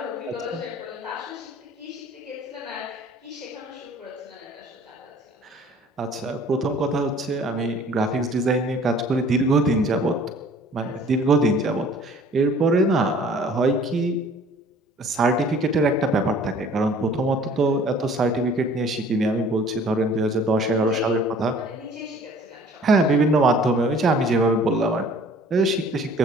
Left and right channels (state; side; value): normal; both; correlation 0.52